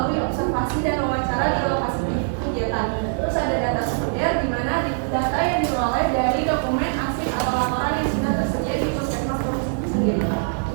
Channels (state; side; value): silent; left; digital silence